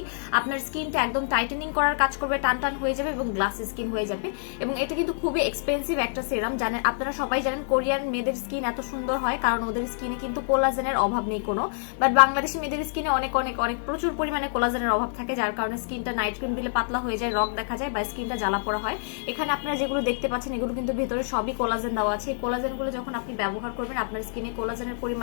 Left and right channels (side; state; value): right; silent; digital silence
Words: আপনার স্কিনটা একদম টাইটেনিং করার কাজ করবে, টান টান হয়ে যাবে এবং গ্লাসি স্কিন হয়ে যাবে। এবং এটা কিন্তু খুবই এক্সপেন্সিভ একটা সেরাম। জানেন, আপনারা সবাই জানেন কোরিয়ান মেয়েদের স্কিন এত সুন্দর হয় কারণ ওদের স্কিনে কিন্তু কোলাজেনের অভাব নেই কোনো। বাট বাংলাদেশি মেয়েদের স্কিনে অনেক অনেক অনেক প্রচুর পরিমাণে কোলাজেনের অভাব থাকে, যার কারণে স্কিনটা নাইট ক্রিম দিলে পাতলা হয়ে যায়, রগ দেখা যায় বা স্কিনটা জ্বালা পোড়া হয়। এখানে আপনারা যেগুলো দেখতে পাচ্ছেন এগুলো কিন্তু ভেতরে সবই কোলাজেন দেওয়া আছে। এই কোলাজেনগুলো যখন আপনি ব্যবহার করবেন আপনার স্কিনে কোলাজেনের